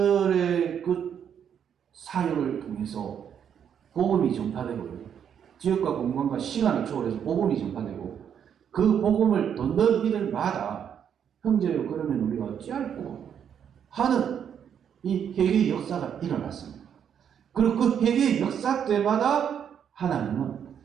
그 사역을 통해서 복음이 전파되고요. 지역과 공간과 시간을 초월해서 복음이 전파되고, 그 복음을 듣는 이들마다 형제요, 그러면 우리가 어찌할꼬 하는 이 회개의 역사가 일어났습니다. 그리고 그 회개의 역사 때마다 하나님은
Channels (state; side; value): quieter; left; 8.4 dB